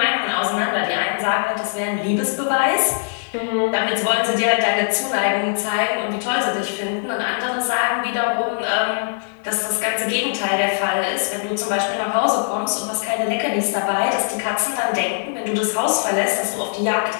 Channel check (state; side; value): silent; right; 65 dB below the other